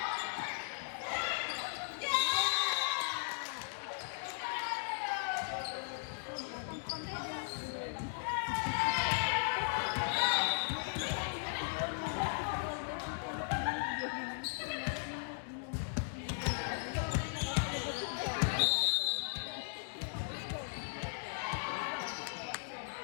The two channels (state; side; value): silent; right; digital silence